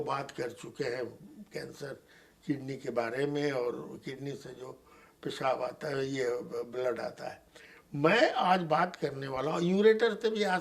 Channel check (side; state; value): both; identical; correlation 1.00